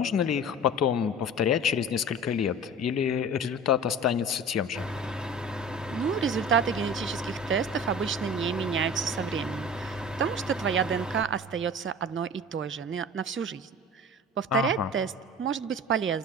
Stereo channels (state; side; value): normal; both; correlation 0.38